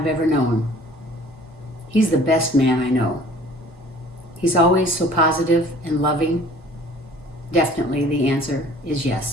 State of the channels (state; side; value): normal; both; correlation 0.51